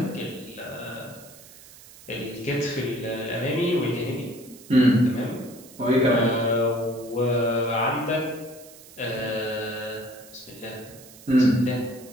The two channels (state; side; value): noise; right; hiss, 20 dB below the sound